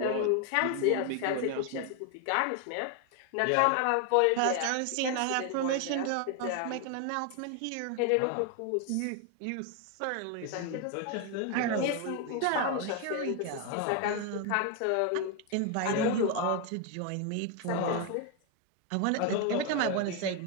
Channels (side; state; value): both; different; correlation 0.01